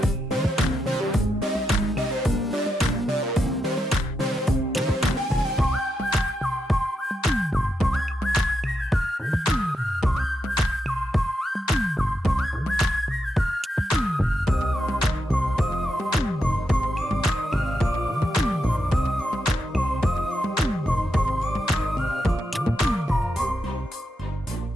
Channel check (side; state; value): both; normal; correlation 0.84